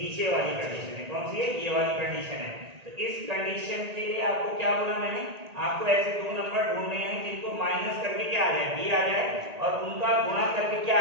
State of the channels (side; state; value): left; late; 1.8 ms